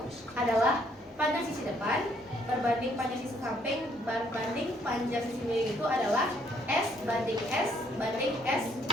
adalah panjang sisi depan berbanding panjang sisi samping berbanding panjang sisi miring itu adalah S banding S banding S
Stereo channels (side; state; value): both; normal; correlation 0.67